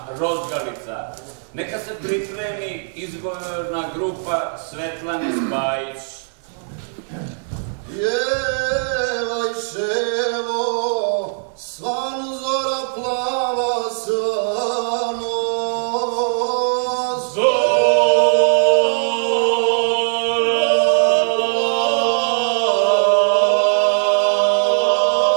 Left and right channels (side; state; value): left; silent; digital silence